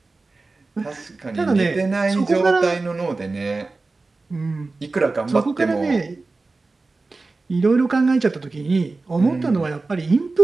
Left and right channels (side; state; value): left; quieter; 3.6 dB